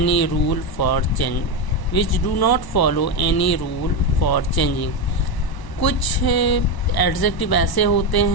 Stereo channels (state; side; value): late; right; 1.0 ms